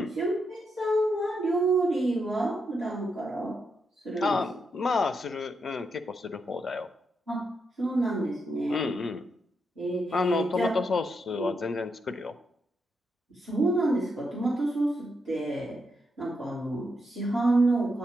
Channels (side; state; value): both; normal; correlation 0.82